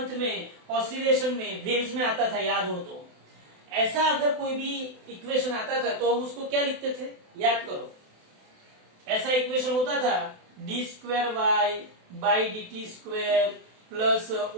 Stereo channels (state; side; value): late; left; 28 ms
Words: में ऑसिलेशन में वेव्स में आता था, याद हो तो। ऐसा अगर कोई भी इक्वेशन आता था तो हम उसको क्या लिखते थे? याद करो, ऐसा इक्वेशन होता था d square Y by D T square plus